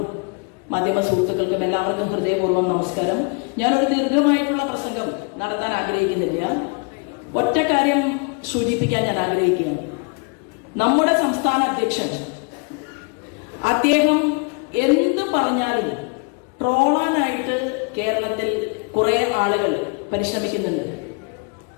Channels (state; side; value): quieter; right; 34.8 dB